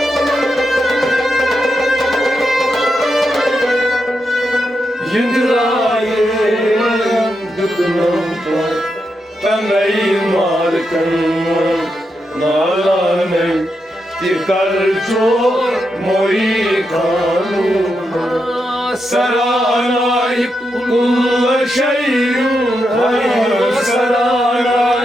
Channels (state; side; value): normal; both; correlation 0.85